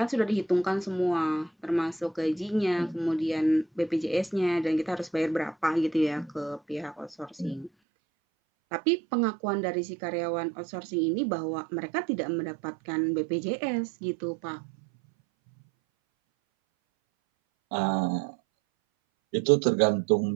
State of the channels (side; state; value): left; drops out; at 7.7 s